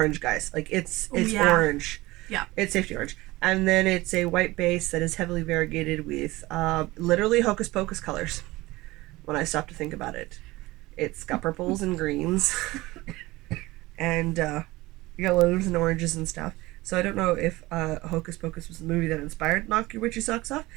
guys. Like it's orange. Yeah. It's safety orange. And then it's a white base that is heavily variegated with literally hocus pocus colors. When I stop to think about it, it's got purples and greens, and yellows and oranges and stuff. So I don't know if Hocus Pocus was the movie that inspired Knock Your Witchy Socks Off,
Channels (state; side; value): quieter; left; 19.8 dB